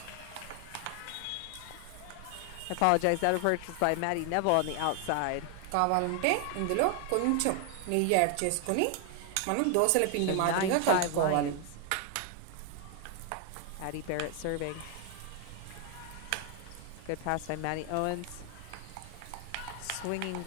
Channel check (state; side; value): different; both; correlation 0.00